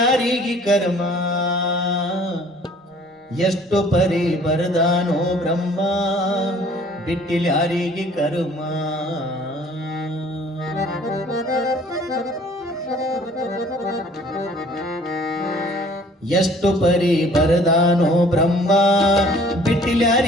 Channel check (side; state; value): both; normal; correlation 0.54